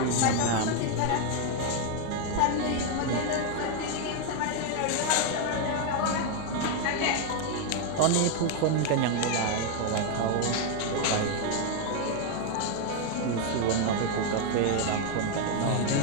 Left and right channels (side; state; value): both; different; correlation 0.01